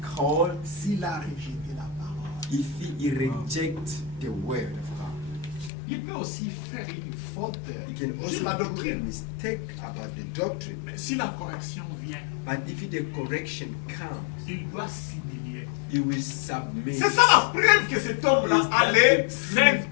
s'il a rejeté la parole. if he reject the word of God. Il peut aussi faire une faute He can sur also la do a doctrine. mistake about the doctrine. Mais si la correction vient, But if the correction comes, il doit s'humilier. he will submit. C'est ça la preuve que cet homme-là Is a that le the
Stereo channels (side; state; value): right; drops out; at 5.7 s